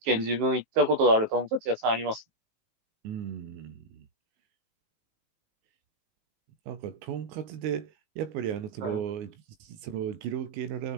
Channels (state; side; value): late; left; 19 ms